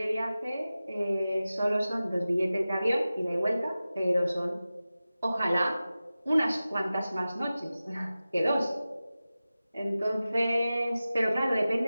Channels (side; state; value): both; inverted; correlation -0.95